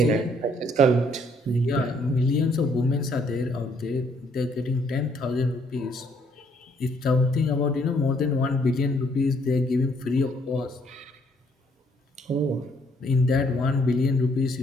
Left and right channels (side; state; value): both; normal; correlation 0.67